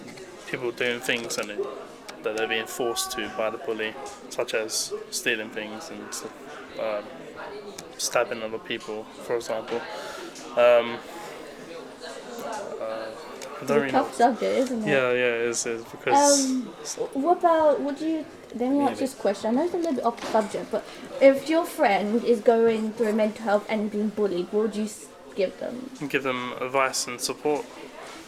people doing things that they're being forced to by the bully, such as stealing things and stabbing other people, for example. I don't really know. Tough subject, isn't it? Yeah, it is because. Let me ask this question. I know it's a little bit off subject, but if your friend is going through mental health and being bullied, what would you give them? Give them advice and support,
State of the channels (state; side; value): identical; both; correlation 1.00